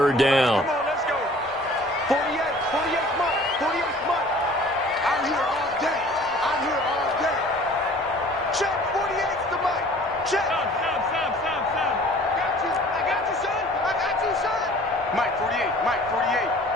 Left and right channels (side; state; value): both; normal; correlation 0.49